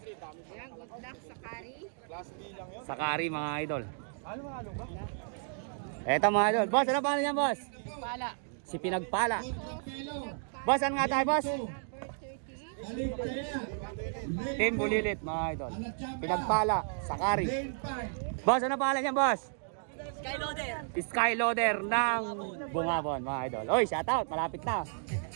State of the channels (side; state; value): left; silent; digital silence